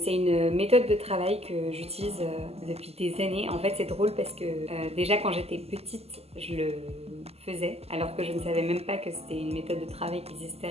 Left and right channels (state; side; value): late; left; 0.29 ms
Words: une méthode de travail que j'utilise depuis des années. En fait c'est drôle parce que déjà quand j'étais petite je le faisais alors que je ne savais même pas que c'était une méthode de travail qui existait